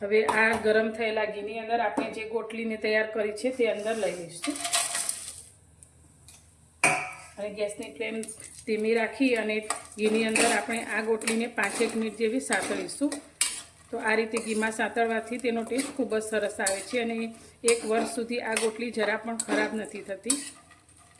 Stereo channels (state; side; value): identical; both; correlation 1.00